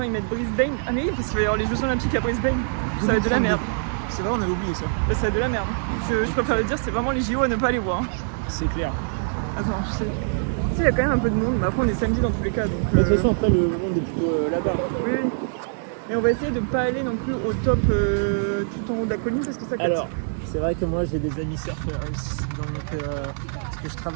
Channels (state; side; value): silent; left; digital silence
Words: ils mettent Brisbane. Ah mais oui, parce qu'il va y avoir les Jeux Olympiques à Brisbane. Ça va être de la merde. C'est vrai, on avait oublié ça. Bah, ça va être de la merde. Je préfère le dire, c'est vraiment les JO à ne pas aller voir. C'est clair. Attends, je sais. il y a quand même un peu de monde, mais après on est samedi dans tous les cas. Donc, De toute façon, après, le monde est plutôt là-bas. Oui, oui. Mais on va essayer de ne pas aller non plus au top tout en haut de la colline parce que ça casse. Alors, c'est vrai que moi j'ai des amis surfeurs, parce que je